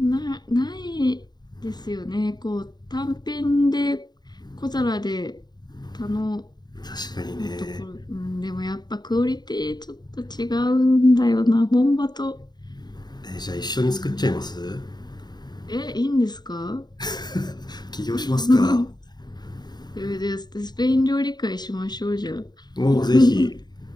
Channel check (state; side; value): late; right; 0.20 ms